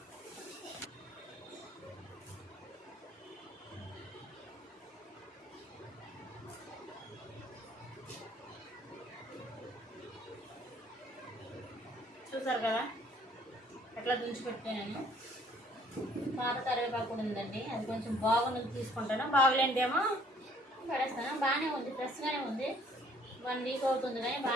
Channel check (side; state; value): both; normal; correlation 0.60